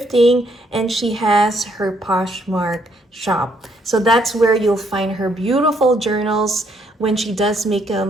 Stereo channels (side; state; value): both; normal; correlation 0.70